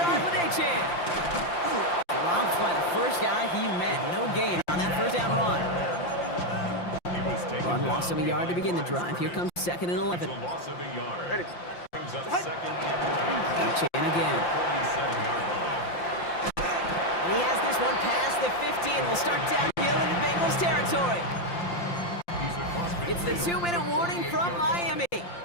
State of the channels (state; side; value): late; right; 5.8 ms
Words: with Achane. Dropped by the first guy he met. No gain on that 1st down run. He was taken Run down loss of a yard to begin the behind drive. Here comes 2nd and 11. a loss of a yard. Brings up 2nd and 11. Achane again. 47-yard line. And he has this one past the 50 and will start downhill into Bengals territory. He's across It's the midfield. 2-minute warning from Miami. A gain